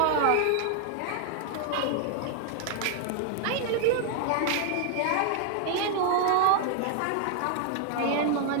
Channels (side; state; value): both; different; correlation 0.00